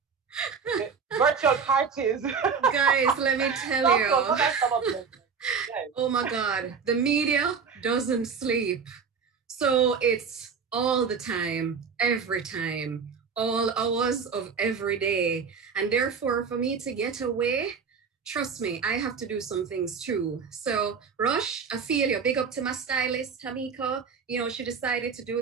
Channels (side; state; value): left; quieter; 5.9 dB